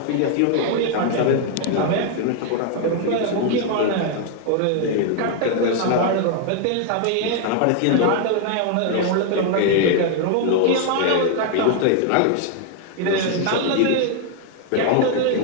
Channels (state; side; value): different; both; correlation 0.00